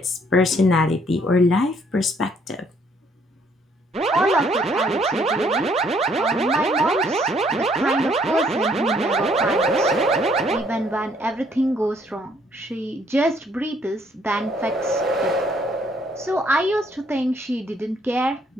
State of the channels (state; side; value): normal; both; correlation 0.65